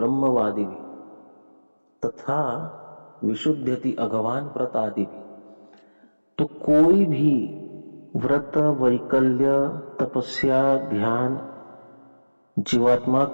भी तथा विशुद्धति अगवान प्रतादि भी। तो कोई भी व्रत, वैकल्य, तपस्या, ध्यान जीवात्मा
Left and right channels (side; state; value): both; inverted; correlation -1.00